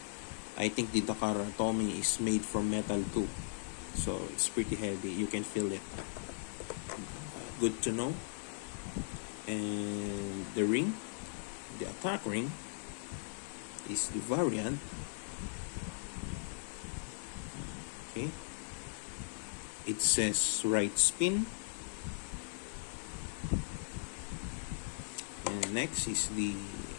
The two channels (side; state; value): right; silent; digital silence